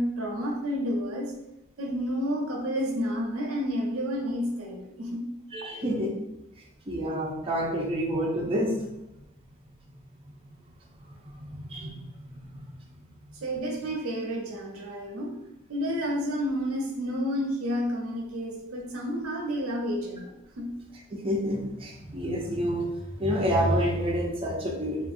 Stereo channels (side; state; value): both; normal; correlation 0.52